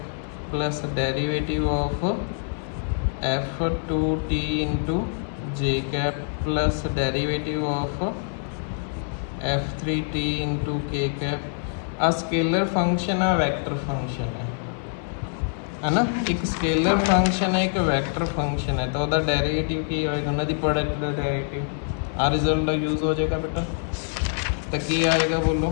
plus derivative of f2t into J cap plus derivative of f3t into K cap. Uh scalar function है वेक्टर फंक्शन है ना। एक स्केलर फंक्शन है एक वेक्टर फंक्शन है तो वह डेरिवेटिव की होएगा उन्होंने प्रोडक्ट का डेरिवेटिव आ रिजल्ट यूज हो जाएगा बेटा। तो की आएगा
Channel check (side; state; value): right; silent; 62 dB below the other